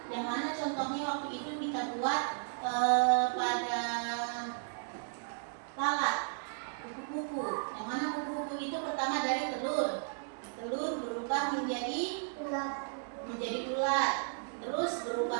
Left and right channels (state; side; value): silent; left; digital silence